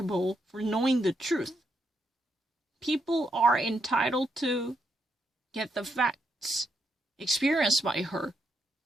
for knowing the truth. People are entitled to get the facts experienced by her.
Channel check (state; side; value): normal; both; correlation 0.79